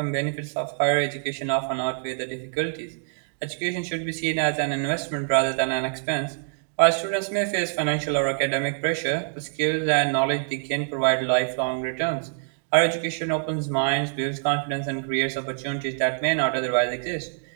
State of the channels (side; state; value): left; silent; digital silence